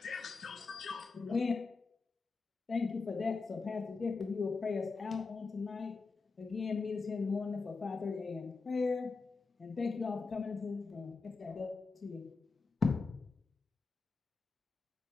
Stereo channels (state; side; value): quieter; right; 4.3 dB